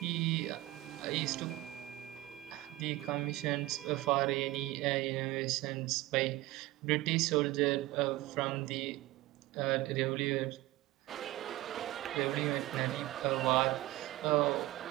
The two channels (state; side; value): quieter; left; 17.8 dB